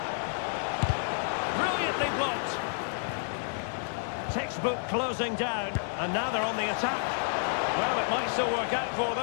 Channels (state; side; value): silent; right; digital silence